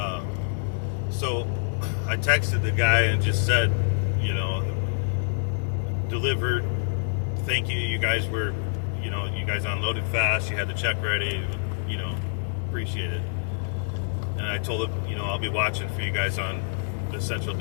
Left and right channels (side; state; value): right; silent; digital silence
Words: So I texted the guy and just said, you know, delivered. Thank you. You guys were, you know, you guys unloaded fast. You had the check ready. You know, Appreciate it. And I told him, you know, I'll be watching for you guys on the central